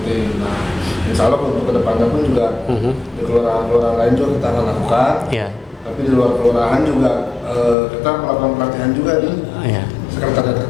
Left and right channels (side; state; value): right; drops out; at 7.8 s